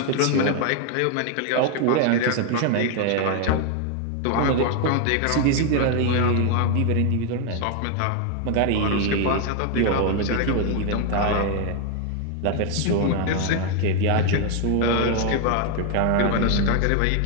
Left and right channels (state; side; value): different; both; correlation 0.01